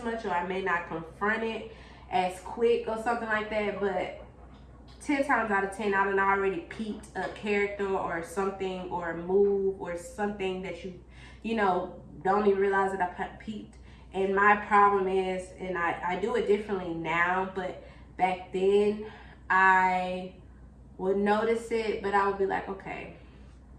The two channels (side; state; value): both; identical; correlation 1.00